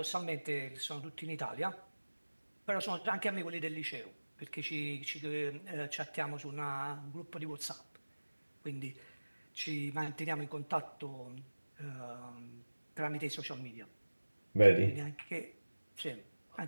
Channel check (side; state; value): both; inverted; correlation -1.00